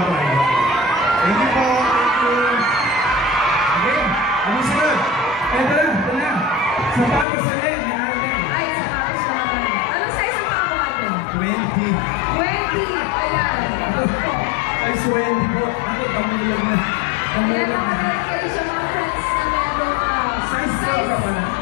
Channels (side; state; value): right; drops out; at 7.2 s